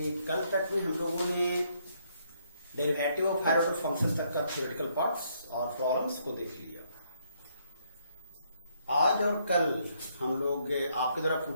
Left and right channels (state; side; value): inverted; both; correlation -0.71